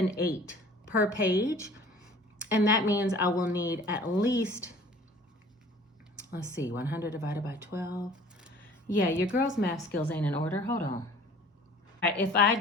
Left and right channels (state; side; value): normal; both; correlation 0.49